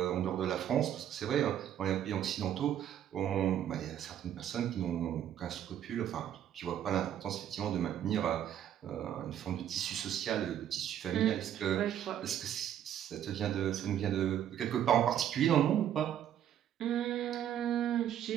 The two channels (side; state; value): left; quieter; 10.5 dB